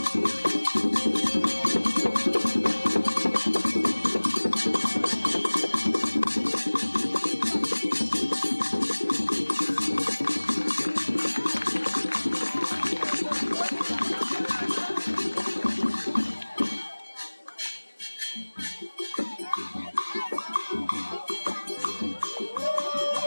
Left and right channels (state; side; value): inverted; both; correlation -1.00